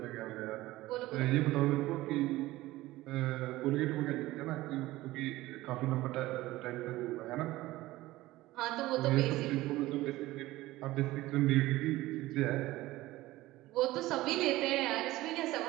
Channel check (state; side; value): quieter; left; 17.6 dB